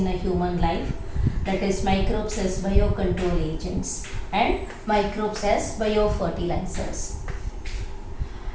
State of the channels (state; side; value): identical; both; correlation 1.00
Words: a human life, that is microbes as biocontrol agents and microbes as biofertilizers.